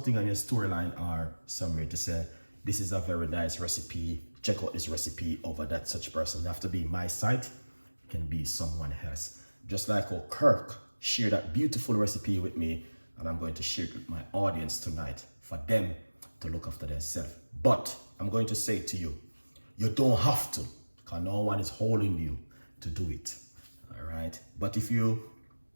on your storyline or somewhere to say, this is a very nice recipe, check out this recipe over that such person. You have to be my site, it can be someone else. Just like how Kirk shared that beautiful recipe with me, and I'm going to share it with my audience tonight for them to look after themselves. But I'm going to say to you, you don't have to, because no one is holding you to do it. All right. But if you're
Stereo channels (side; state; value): both; inverted; correlation -1.00